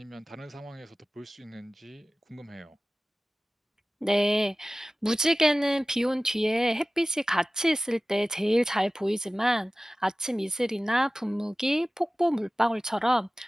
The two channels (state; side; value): normal; both; correlation 0.97